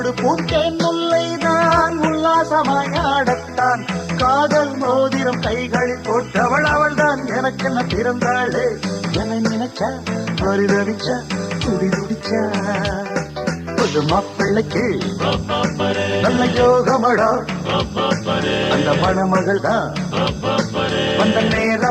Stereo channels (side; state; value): both; identical; correlation 1.00